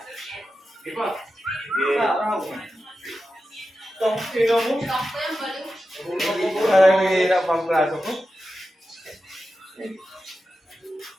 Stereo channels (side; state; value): both; normal; correlation 0.91